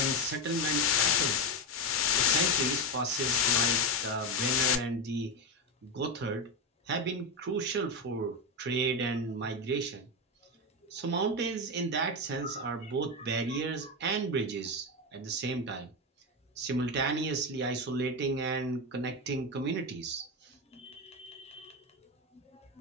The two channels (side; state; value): both; normal; correlation 0.13